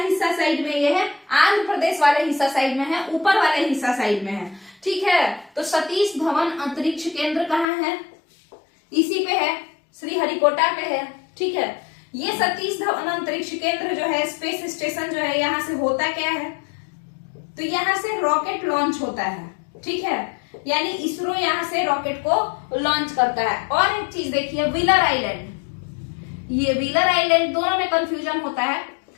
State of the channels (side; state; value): right; drops out; at 7.7 s